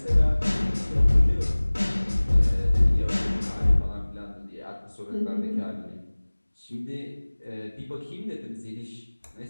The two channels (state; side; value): inverted; both; correlation -1.00